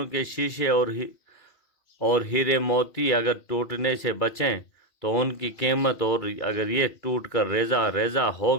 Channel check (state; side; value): late; right; 2.3 ms